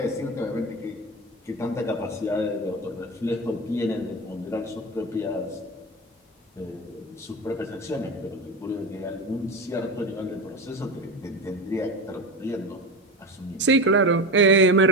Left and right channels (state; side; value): normal; both; correlation 0.23